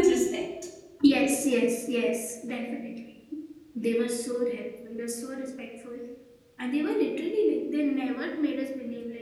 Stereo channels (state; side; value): identical; both; correlation 1.00